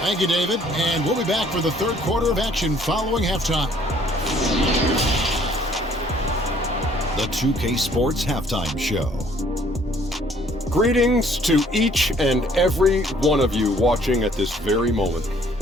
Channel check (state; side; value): normal; both; correlation 0.60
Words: Thank you, David. And we'll be back for the third quarter of action following halftime. The 2K Sports Halftime Show. Greetings to each and every one of you watching at this very moment.